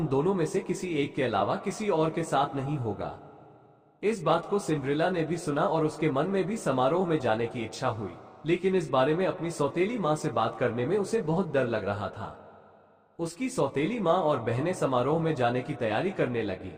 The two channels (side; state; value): both; identical; correlation 1.00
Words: दोनों में से किसी एक के अलावा किसी और के साथ नहीं होगा। इस बात को सिंड्रेला ने भी सुना और उसके मन में भी समारोह में जाने की इच्छा हुई, लेकिन इस बारे में अपनी सौतेली माँ से बात करने में उसे बहुत डर लग रहा था। उसकी सौतेली माँ और बहनें समारोह में जाने की तैयारी करने लगी।